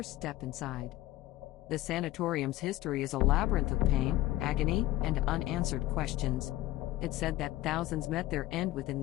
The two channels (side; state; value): right; quieter; 15.8 dB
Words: step inside. The sanatorium's history is a labyrinth of pain, agony, and unanswered questions. It's said that thousands met their end within